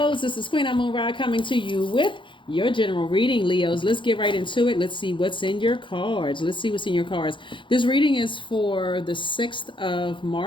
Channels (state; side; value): late; right; 0.24 ms